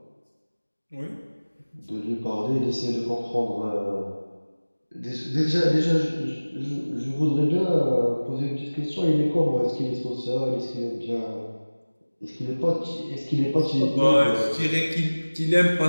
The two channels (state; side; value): inverted; both; correlation -1.00